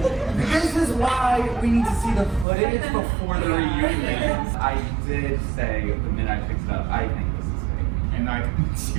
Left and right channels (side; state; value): left; drops out; at 2.5 s